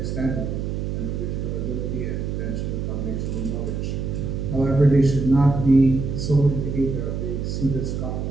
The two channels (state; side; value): noise; right; hum, 3 dB below the sound